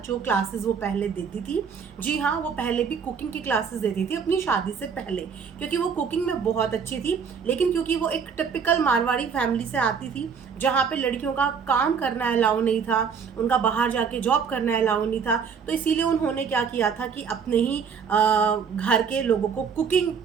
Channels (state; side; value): quieter; left; 6.4 dB